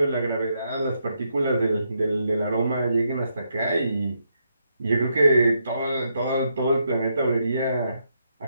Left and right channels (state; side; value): inverted; both; correlation -0.79